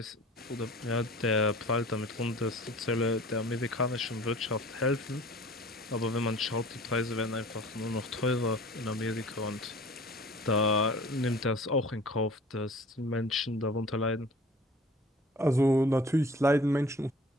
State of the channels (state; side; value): normal; both; correlation 0.46